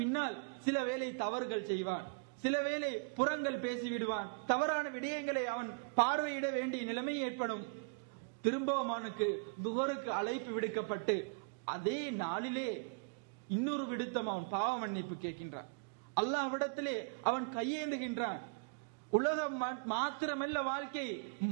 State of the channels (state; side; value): quieter; left; 36.6 dB